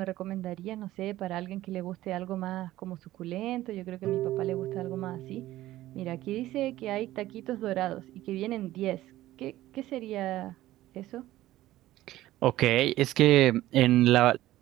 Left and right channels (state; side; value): quieter; left; 15.4 dB